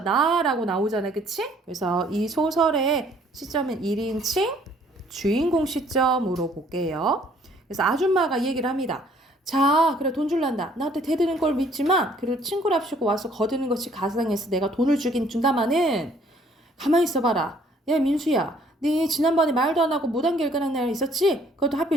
나오잖아요. 그치? 그래서 이 소설의 시점은 1인칭 주인공 시점으로 볼게요. 그래서 아줌마가 이 얘기를 합니다. 자, 그래 돈 줄란다. 나한테 대드는 걸 믿지만 그리고 친구랍시고 와서 거드는 것이 가상해서 내가 돈을 주긴 준다마는 가만히 있어봐라. 야, 민수야. 네 지난번에 말도 안 하고 무단 결근한 날 있었지? 그것도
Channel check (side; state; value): both; normal; correlation 0.61